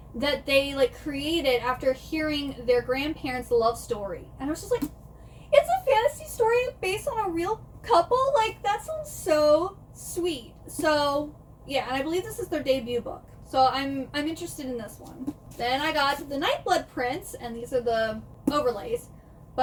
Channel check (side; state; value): both; identical; correlation 1.00